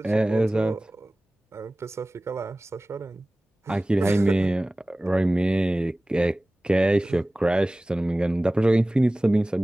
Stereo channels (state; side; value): normal; both; correlation 0.98